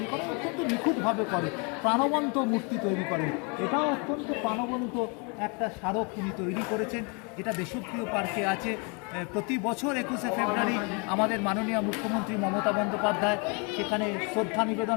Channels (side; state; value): right; quieter; 33.5 dB